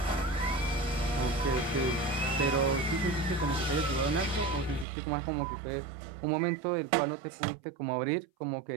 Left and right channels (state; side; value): drops out; left; at 4.9 s